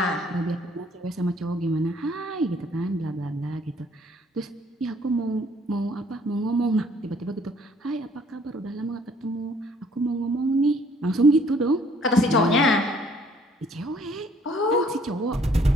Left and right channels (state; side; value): normal; both; correlation 0.61